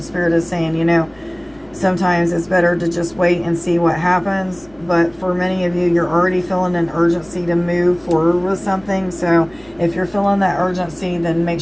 Spirit is saying, sometimes it's better to just wait and see what happens. But for many of you, you're already feeling an urgency to move forward with something. So if you're feeling that urgency, then make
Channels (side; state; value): left; noise; rumble, 29 dB below the sound